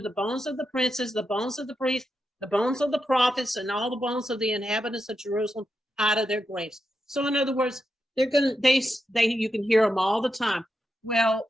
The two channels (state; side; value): normal; both; correlation 0.87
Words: the bones of the princes, the bones of the priests, the bones of the prophets, and all the bones of the inhabitants of Jerusalem out of their graves. So in other words, you can hear them all the time. Well,